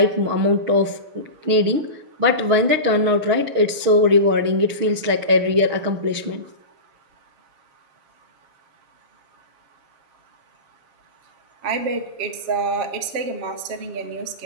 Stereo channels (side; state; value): left; late; 6.4 ms